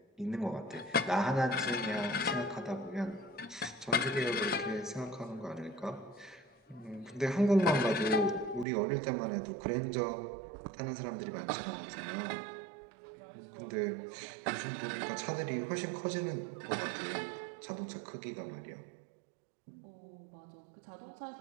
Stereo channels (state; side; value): drops out; left; at 8.7 s